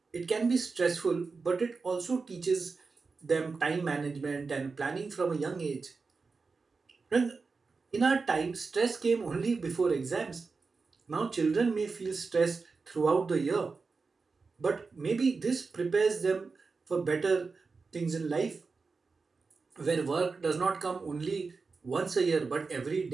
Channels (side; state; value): left; quieter; 4.4 dB